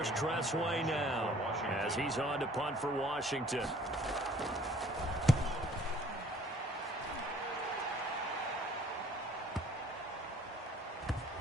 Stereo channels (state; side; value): normal; both; correlation 0.55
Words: Tressway now as he's on to punt for Washington.